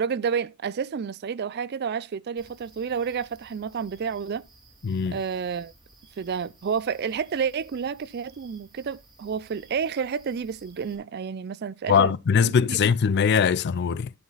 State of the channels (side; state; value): both; normal; correlation 0.06